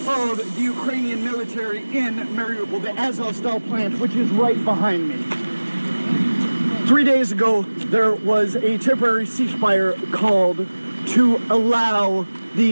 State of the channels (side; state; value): both; inverted; correlation -1.00